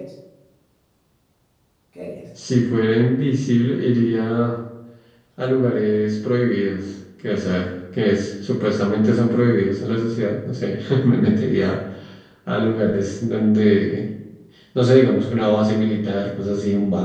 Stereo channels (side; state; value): both; identical; correlation 1.00